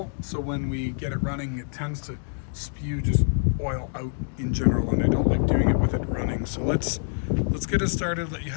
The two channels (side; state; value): right; silent; digital silence